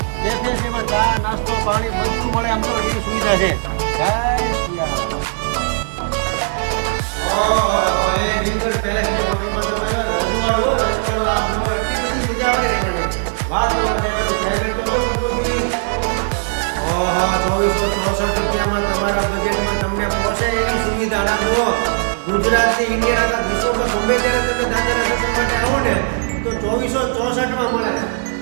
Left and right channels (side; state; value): left; silent; 67 dB below the other